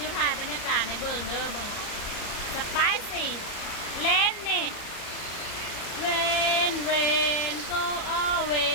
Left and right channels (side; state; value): right; late; 34 ms